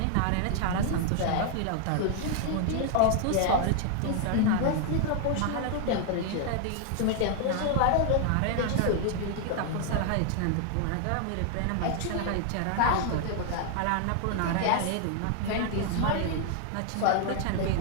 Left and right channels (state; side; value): different; both; correlation 0.00